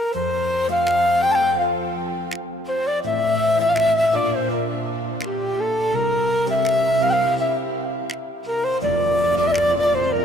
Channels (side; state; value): both; normal; correlation 0.66